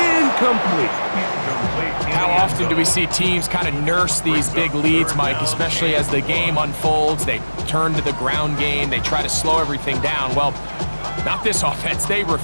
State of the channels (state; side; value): inverted; both; correlation -1.00